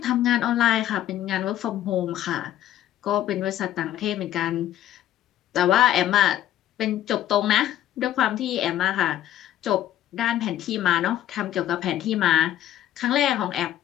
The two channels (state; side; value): quieter; right; 12.3 dB